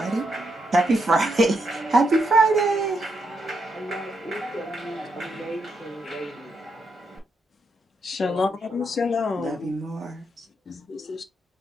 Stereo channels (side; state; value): both; normal; correlation 0.80